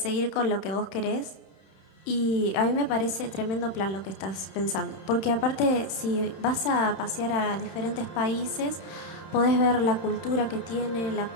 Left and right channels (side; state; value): right; late; 31 ms